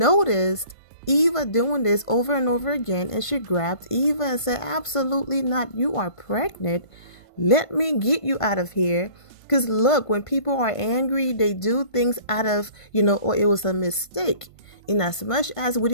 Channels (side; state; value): right; late; 1.5 ms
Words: Eva doing this over and over again, and she grabbed Eva and said, absolutely not, you are pregnant. Let me get you out of here. Because look, when people are angry, they do things out of, or it was a mistake. In as much as we